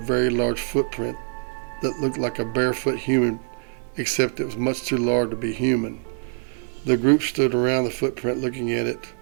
large footprint that looked like a barefoot human, except it was much too large to be human. The group stood around the footprint looking at it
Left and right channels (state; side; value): silent; left; 62 dB below the other